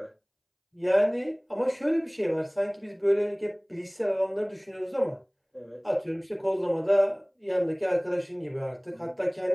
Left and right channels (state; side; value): identical; both; correlation 1.00